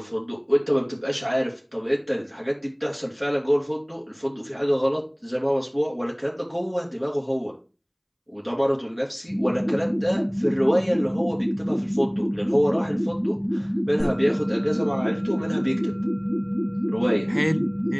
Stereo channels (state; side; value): identical; both; correlation 1.00